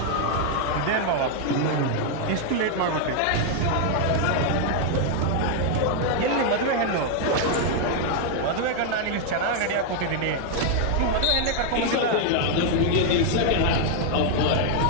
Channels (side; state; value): both; different; correlation 0.00